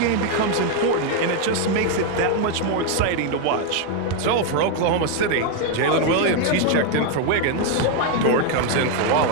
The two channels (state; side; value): different; both; correlation 0.01